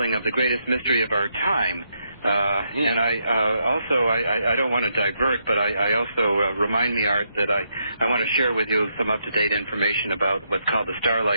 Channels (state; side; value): inverted; both; correlation -0.79